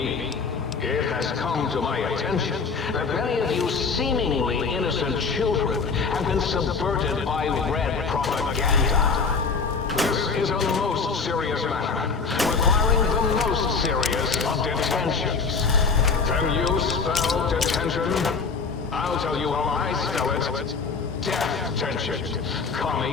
It has come to my attention that many of you seemingly innocent children have been subverted by red propaganda. This is a most serious matter, requiring the most serious of detentions. Can you spell detention? I'll tell you how I spell it. Death tension.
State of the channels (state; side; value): quieter; right; 4.9 dB